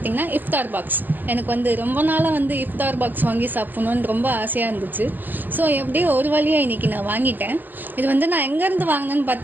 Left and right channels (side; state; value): left; late; 0.087 ms